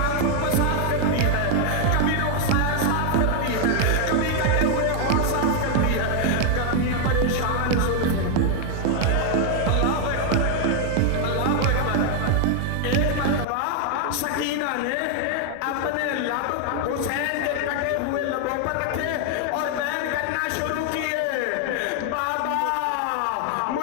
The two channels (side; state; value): both; different; correlation 0.00